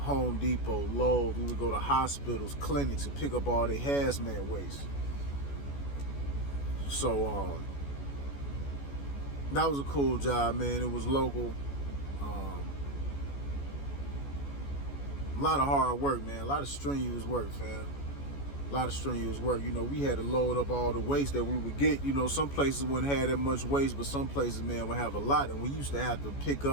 Depot, Lowe's. We would go to hospitals, clinics, and pick up all their hazmat waste. So that was a cool job, man. It was local. A lot of hard work, man. A lot of strenuous work, fam. A lot of strenuous work. You know, we had to load up all the waste that we would get. You know, some places wouldn't have that much waste, but some places, man, would have a lot. And we used to have to pick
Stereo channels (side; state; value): right; late; 14 ms